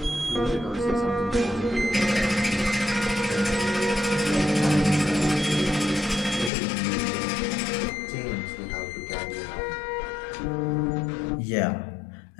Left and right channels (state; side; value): drops out; right; at 6.5 s